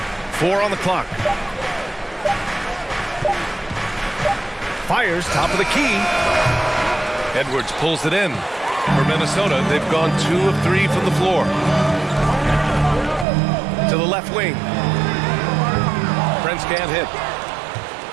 4 on the clock. Fires, top of the key. Edwards pulls it in. For Minnesota, they've gone 2 of 3 from the floor. To the left wing. Prince can't hit.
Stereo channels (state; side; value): drops out; left; at 13.2 s